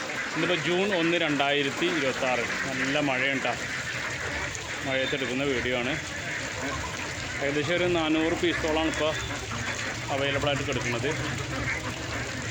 ഇന്നിപ്പോൾ ജൂൺ 1, 2026. നല്ല മഴയുണ്ടാ. മഴയത്തെടുക്കുന്ന വീഡിയോ ആണ്. ഏകദേശം ഒരു 400 പീസോളാണ് ഇപ്പോൾ അവൈലബിൾ ആയിട്ട് കിടക്കുന്നത്.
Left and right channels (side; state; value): both; identical; correlation 1.00